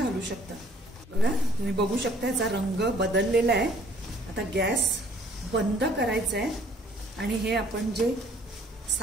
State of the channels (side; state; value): both; normal; correlation 0.58